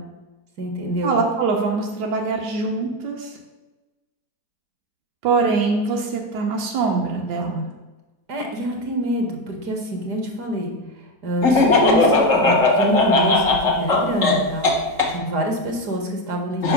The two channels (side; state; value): left; late; 4.9 ms